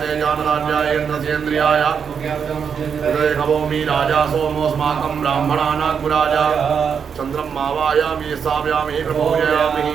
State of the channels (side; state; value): left; quieter; 6.8 dB